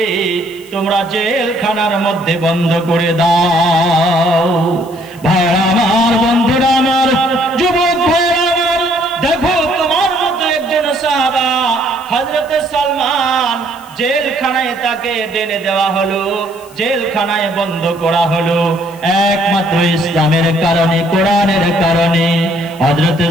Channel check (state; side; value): noise; left; hiss, 24 dB below the sound